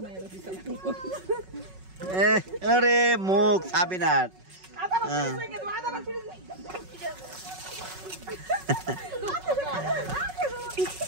আরে মুখ সাবিনার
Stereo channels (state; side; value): late; left; 5.4 ms